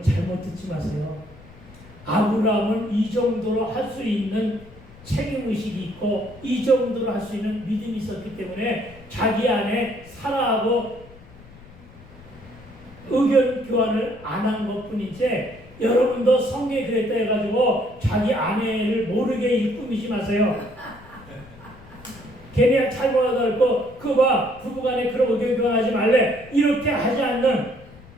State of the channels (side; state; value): left; noise; rumble, 21 dB below the sound